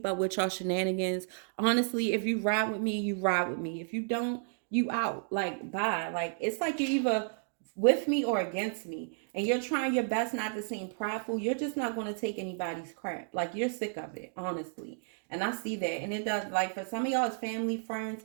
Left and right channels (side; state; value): left; silent; 56 dB below the other